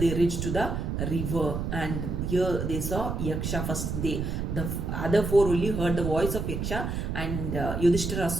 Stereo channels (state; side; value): noise; right; rumble, 2 dB below the sound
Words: reached to the river, and here they saw Yaksha first. The other four only heard the voice of Yaksha, and Yudhishthira